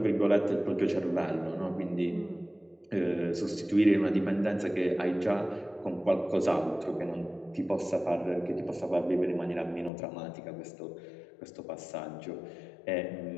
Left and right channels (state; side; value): drops out; right; at 9.9 s